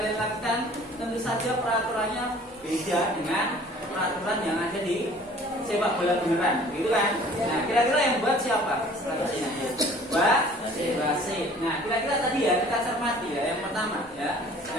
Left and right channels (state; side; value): normal; both; correlation 0.50